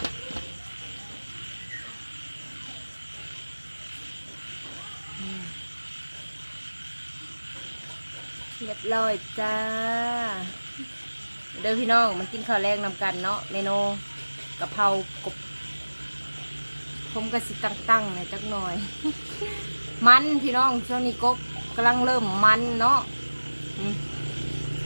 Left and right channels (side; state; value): both; inverted; correlation -1.00